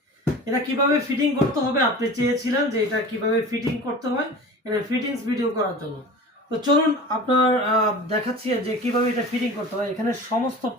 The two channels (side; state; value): both; normal; correlation 0.37